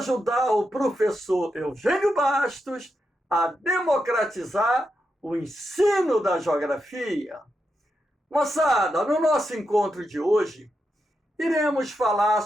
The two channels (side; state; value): both; normal; correlation 0.85